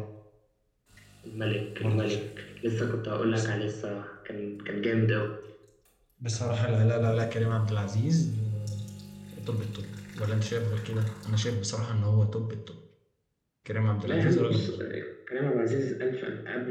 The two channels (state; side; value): identical; both; correlation 1.00